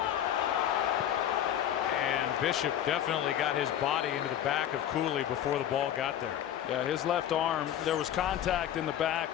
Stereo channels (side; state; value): right; quieter; 10.7 dB